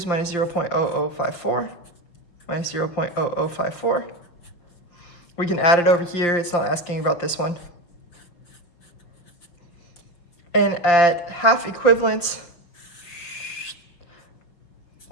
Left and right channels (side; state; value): right; late; 5.8 ms